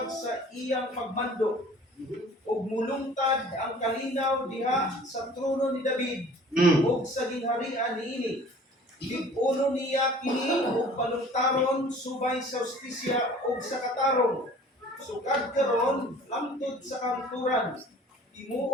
sa iyang pagmando, ug mulungtad ang kalinaw diha sa trono ni David, ug sa gingharian niini. Lig-uno niya kini ug balungtaron subay sa justisya ug sa katarong. Sukad karon lamtod sa kanturan.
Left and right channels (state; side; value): normal; both; correlation 0.48